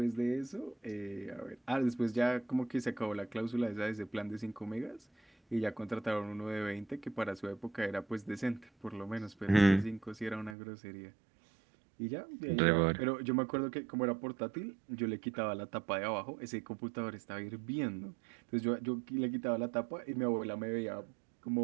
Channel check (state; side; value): drops out; left; at 10.6 s